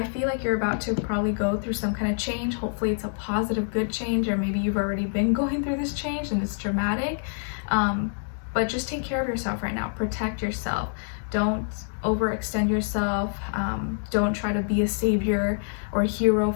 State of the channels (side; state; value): right; silent; digital silence